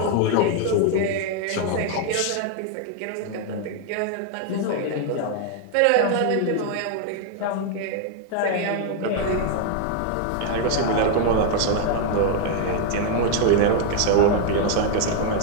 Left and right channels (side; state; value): both; different; correlation 0.00